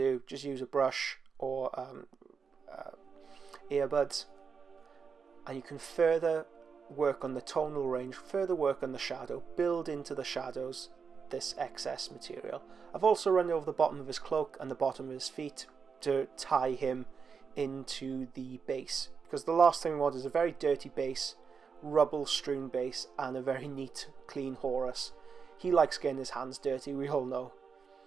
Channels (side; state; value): left; quieter; 5.8 dB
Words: just use a brush or earbuds, and you can further work on the tonal range, further work on the shadow, build into the shadows this excess material. I've also run over the bottom of his cloak and the bottom of his feet to tie him into the base, because the last thing we want is a very dirty base, rubble strewn base, and a very neat clean Horus. He likes getting his hands dirty, we all know.